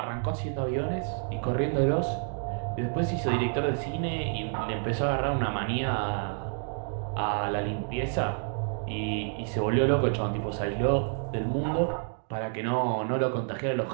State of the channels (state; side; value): silent; left; 59 dB below the other